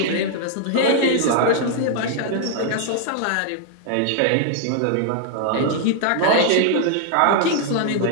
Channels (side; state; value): both; different; correlation 0.00